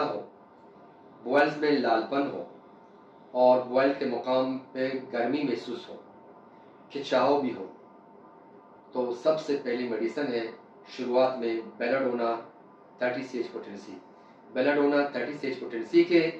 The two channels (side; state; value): both; identical; correlation 1.00